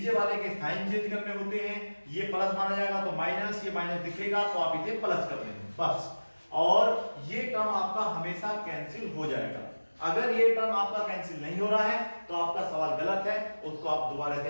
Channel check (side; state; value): both; inverted; correlation -1.00